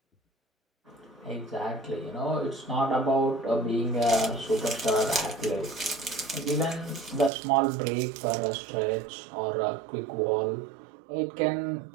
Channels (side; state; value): left; drops out; at 7.3 s